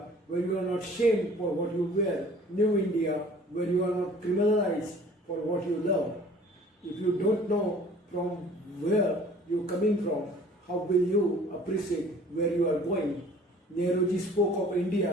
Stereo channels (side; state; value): both; normal; correlation 0.50